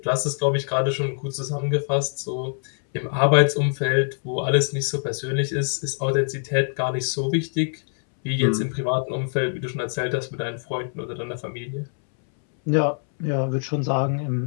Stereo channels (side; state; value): right; silent; 63 dB below the other